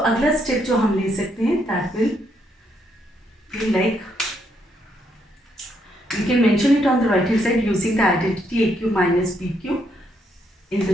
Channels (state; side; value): normal; both; correlation 0.74